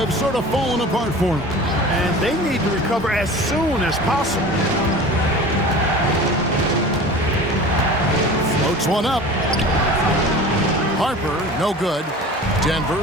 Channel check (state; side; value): normal; both; correlation 0.38